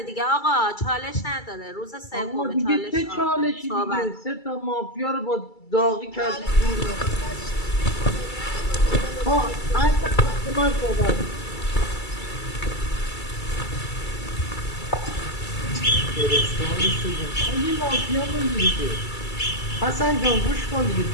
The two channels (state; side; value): late; right; 2.3 ms